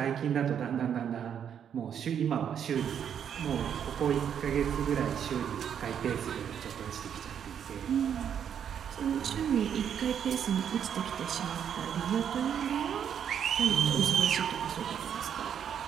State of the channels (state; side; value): quieter; left; 8.5 dB